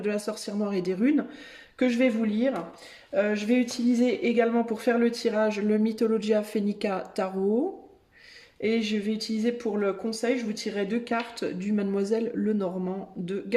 la sorcière noire et des runes, que je vais vous lire. Je vais utiliser également pour faire le tirage le Mythologia Phoenica Tarot. Et je vais utiliser pour le conseil, je vous tirerai deux cartes du Mademoiselle Lenormand de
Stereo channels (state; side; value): identical; both; correlation 1.00